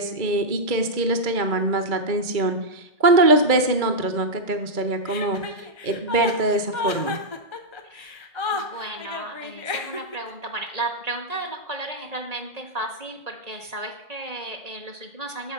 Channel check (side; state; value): left; late; 2.2 ms